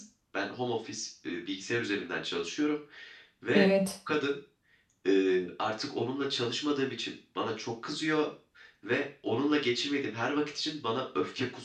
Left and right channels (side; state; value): both; identical; correlation 1.00